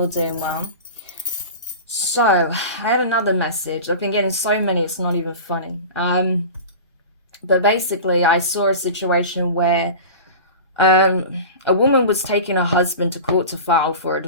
doing well. So, I had another message. I've been getting so many, it's not even funny. But basically, I saw a situation where a woman was taking her husband to court to file for a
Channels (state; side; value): inverted; both; correlation -0.33